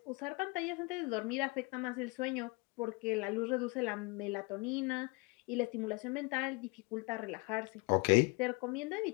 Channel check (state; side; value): quieter; right; 27.8 dB